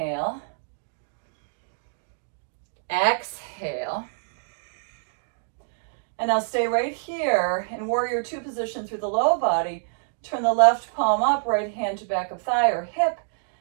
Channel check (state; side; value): silent; left; digital silence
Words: Exhale. And now stay right here in warrior two position through the low body. Turn the left palm up, right hand to back of thigh or hip.